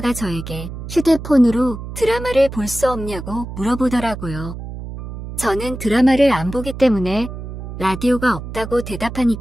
저에게 휴대폰으로 드라마를 볼 수 없냐고 물어보더라고요. 저는 드라마를 안 보기 때문에 라디오가 없다고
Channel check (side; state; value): right; noise; hum, 9 dB below the sound